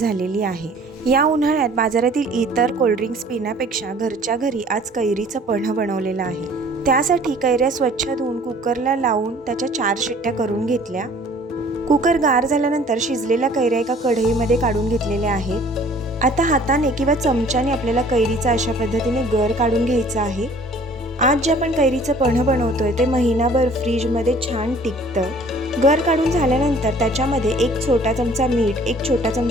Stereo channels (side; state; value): both; normal; correlation 0.52